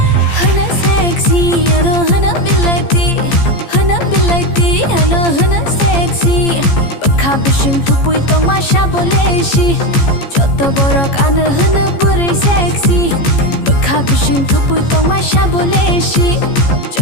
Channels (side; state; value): right; late; 15 ms